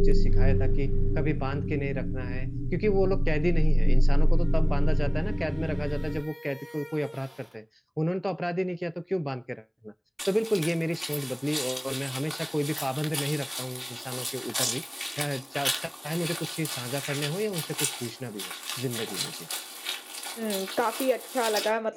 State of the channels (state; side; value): identical; both; correlation 1.00